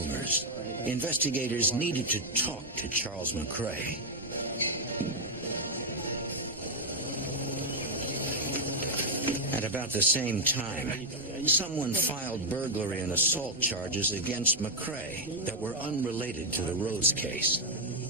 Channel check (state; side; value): noise; right; rumble, 21 dB below the sound